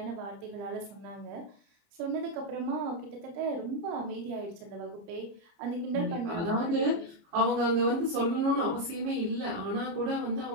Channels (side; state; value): left; late; 29 ms